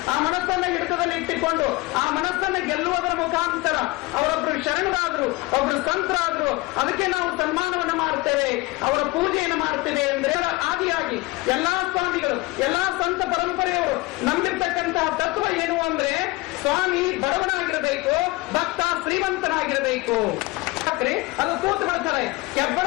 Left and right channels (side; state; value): right; quieter; 21.9 dB